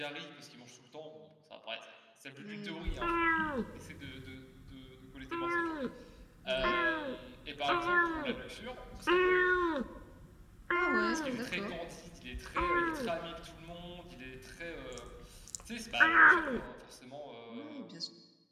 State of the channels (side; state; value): both; identical; correlation 1.00